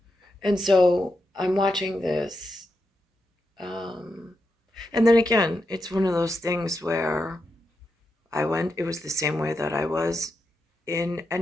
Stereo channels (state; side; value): normal; both; correlation 0.86